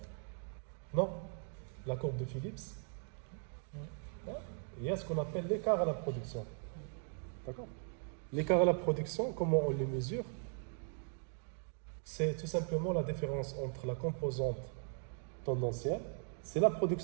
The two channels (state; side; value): silent; left; 52 dB below the other